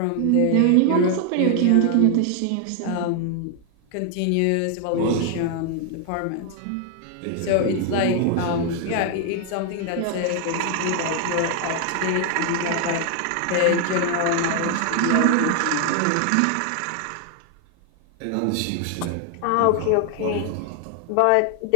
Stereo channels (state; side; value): different; both; correlation 0.00